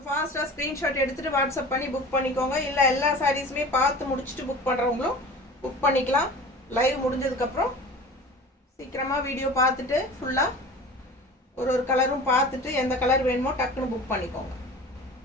ஃபாஸ்ட்டாக ஸ்க்ரீன்ஷாட் எடுத்துகிட்டு வாட்ஸ்அப் பண்ணி புக் பண்ணிக்கோங்க. இல்லை எல்லா சாரீஸுமே பார்த்து முடிச்சுட்டு புக் பண்ணுறவங்களும் புக் பண்ணிக்கலாம். லைவ் முடிஞ்சதுக்கப்புறம் சீக்கிரமாக வீடியோ பார்த்துட்டு ஃபுல்லாக ஒரு கலரும் பார்த்துட்டு எந்த கலர் வேணுமோ டக்குன்னு புக் பண்ணிக்கோங்க.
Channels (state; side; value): normal; both; correlation 0.38